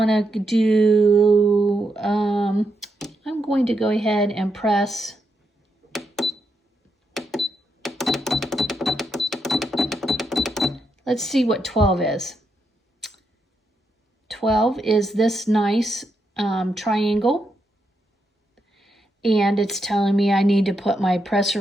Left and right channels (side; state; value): both; normal; correlation 0.82